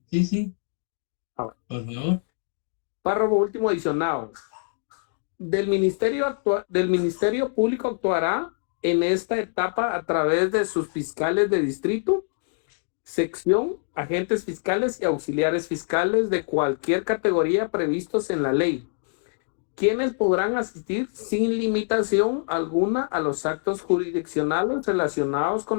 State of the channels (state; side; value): silent; right; digital silence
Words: Por favor. Párrafo último adicionado. Del Ministerio Público actuará en esta etapa a través de sus fiscales de distrito, sección, agentes fiscales y auxiliares fiscales de cualquier categoría previstos en la ley, quienes podrán asistir sin limitación alguna a los actos jurisdiccionales relacionados